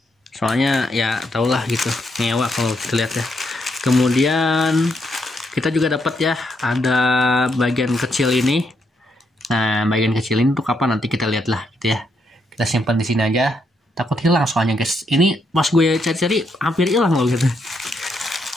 Soalnya ya tau lah gitu, ngewa kalau kita lihat ya. Kemudian kita juga dapat ya, ada bagian kecil ini. Nah, bagian kecil ini untuk apa nanti kita lihat lah gitu ya. Kita simpan di sini aja, takut hilang soalnya guys. Ini pas gue cari-cari hampir hilang loh gitu.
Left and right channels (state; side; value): normal; both; correlation 0.78